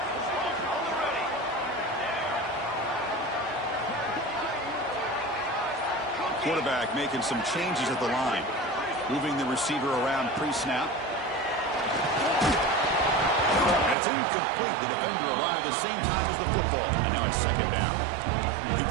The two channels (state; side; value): drops out; left; at 14.0 s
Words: Quarterback making some changes at the line. Moving the receiver around pre-snap. And it's incomplete. The defender arrived the same time as the football. And now it's second down. The